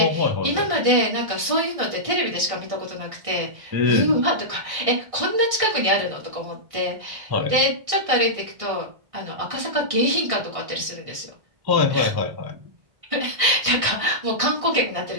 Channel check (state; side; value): late; left; 1.6 ms